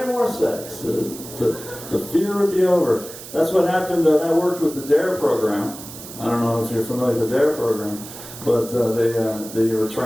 more sex. The fear would be over. That's what happened. That worked with the DARE program. I don't know if you're familiar with the DARE program, but they were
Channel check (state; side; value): noise; right; hiss, 14 dB below the sound